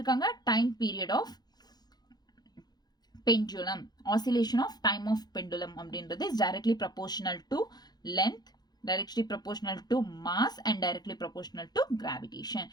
time period of pendulum, oscillation of time of pendulum அப்படின்றது is directly proportional to length, directly proportional to mass, and directly proportional to gravitation.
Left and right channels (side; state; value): right; late; 0.20 ms